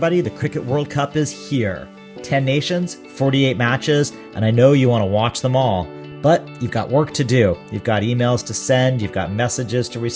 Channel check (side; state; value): both; identical; correlation 1.00